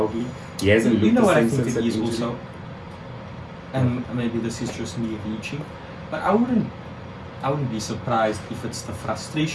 he hasn't You looked know the what I same think since it that is injury. also, and maybe this is just me reaching, but I wouldn't be surprised if it's the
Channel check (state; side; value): identical; both; correlation 1.00